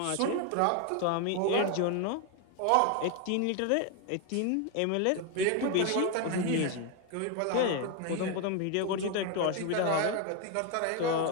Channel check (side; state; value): both; different; correlation 0.01